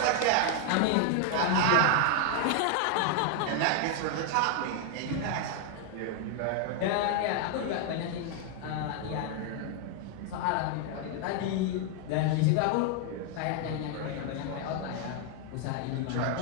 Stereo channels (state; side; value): different; both; correlation 0.00